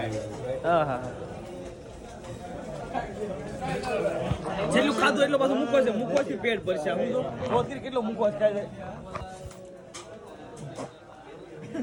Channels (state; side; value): identical; both; correlation 1.00